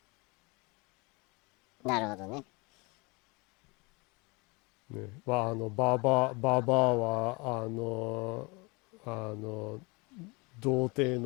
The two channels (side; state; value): right; quieter; 27.6 dB